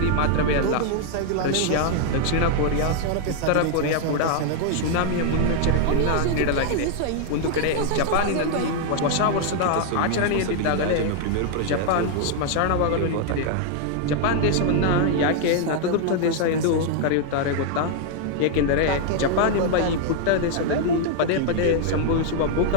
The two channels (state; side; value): different; both; correlation 0.00